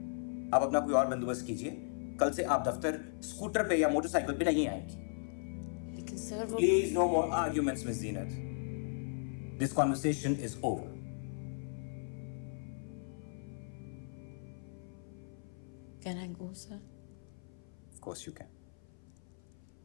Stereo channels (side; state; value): right; silent; 53 dB below the other